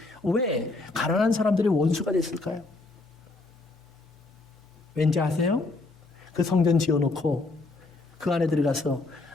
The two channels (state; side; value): quieter; right; 3.4 dB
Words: 왜 가난한 사람들의 원수가 됐을까요? 왠지 아세요? 그 성전 지어놓고 그 안에 들어가서